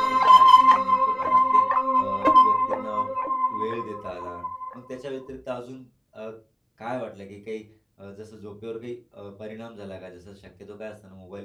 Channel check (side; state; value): both; identical; correlation 1.00